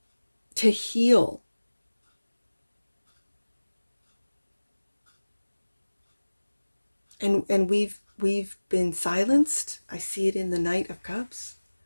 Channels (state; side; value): inverted; both; correlation -1.00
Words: to heal. And we've been silenced. I see it in the Knight of Cups,